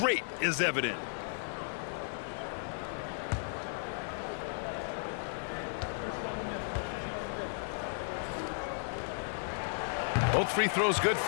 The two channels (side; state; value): right; silent; digital silence